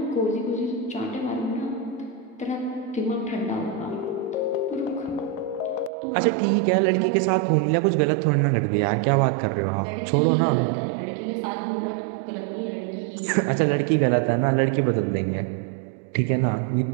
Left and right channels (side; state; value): left; drops out; at 5.9 s